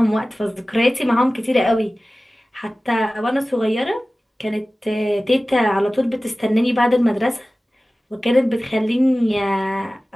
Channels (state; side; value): normal; both; correlation 0.97